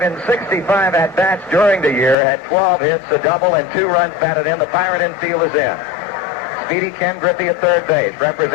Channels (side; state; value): right; drops out; at 2.1 s